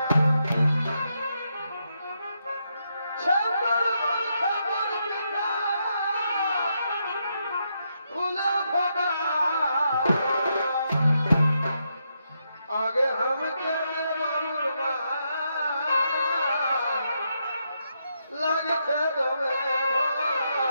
आगे हम के बाबुरमा लगते दमे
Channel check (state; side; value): inverted; both; correlation -0.81